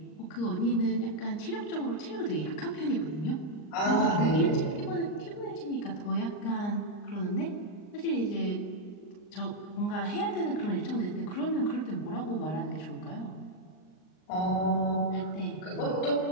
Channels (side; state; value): right; late; 39 ms